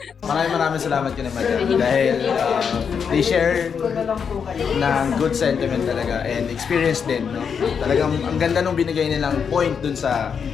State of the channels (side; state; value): right; quieter; 6.7 dB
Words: Maraming salamat kay madam dahil they share ng good sentiment talaga and experience din, no? Talagang ang ganda nung binigay nilang point dun sa